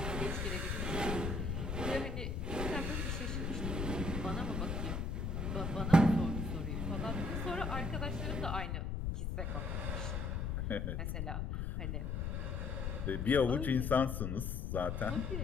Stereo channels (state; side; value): noise; left; rumble, 1 dB below the sound